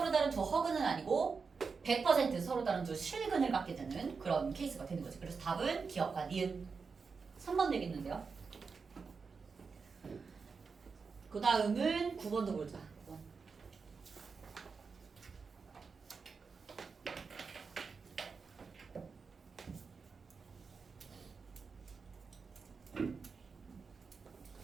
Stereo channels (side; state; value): left; quieter; 5.1 dB